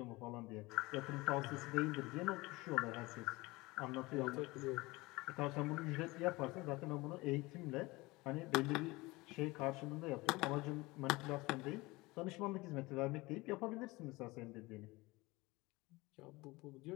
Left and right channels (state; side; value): quieter; right; 22.1 dB